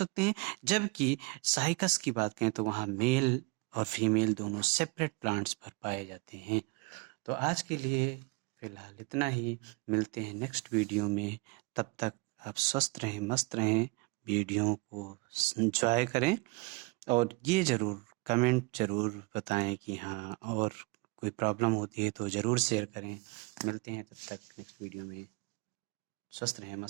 हैं। जबकि साइकस की बात करें तो वहाँ मेल और फीमेल दोनों सेपरेट प्लांट्स पर पाए जाते हैं। तो आज के लिए फिलहाल इतना ही, मिलते हैं नेक्स्ट वीडियो में। तब तक आप स्वस्थ रहें, मस्त रहें, वीडियो को एंजॉय करें, और ये ज़रूर कमेंट ज़रूर बताएं कि हाँ, और कोई प्रॉब्लम होती है तो ज़रूर शेयर करें। मिलते हैं तब तक नेक्स्ट वीडियो में, स्वस्थ रहें,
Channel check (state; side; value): quieter; left; 27.2 dB